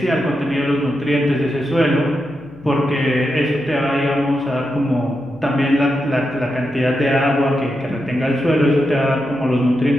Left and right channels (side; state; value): left; noise; hum, 24 dB below the sound